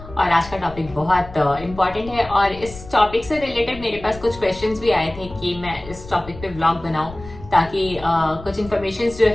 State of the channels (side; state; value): left; noise; rumble, 16 dB below the sound